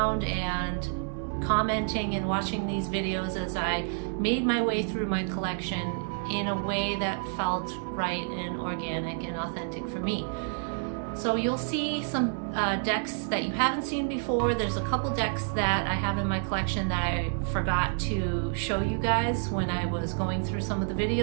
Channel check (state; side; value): silent; left; 59 dB below the other